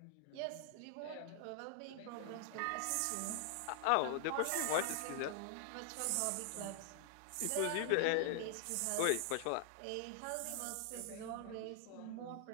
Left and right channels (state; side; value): different; both; correlation 0.00